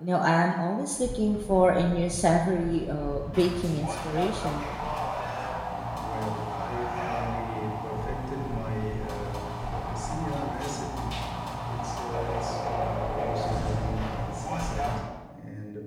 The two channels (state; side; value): identical; both; correlation 1.00